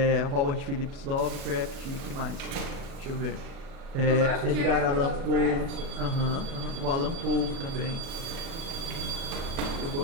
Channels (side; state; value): left; late; 37 ms